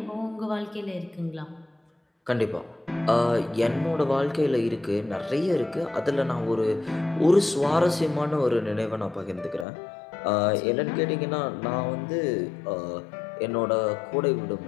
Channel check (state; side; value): drops out; right; at 9.7 s